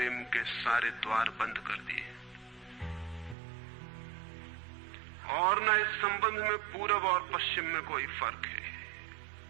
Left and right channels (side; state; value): left; drops out; at 3.4 s